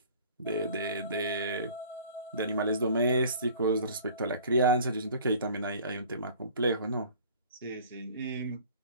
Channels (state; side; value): inverted; both; correlation -0.48